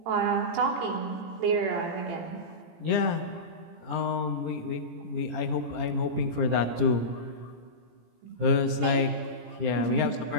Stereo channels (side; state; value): left; late; 18 ms